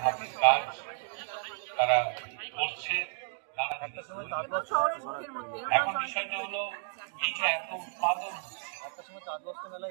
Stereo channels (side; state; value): left; silent; digital silence